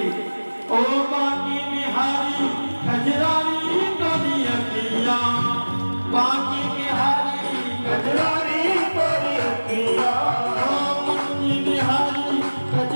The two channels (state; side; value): inverted; both; correlation -1.00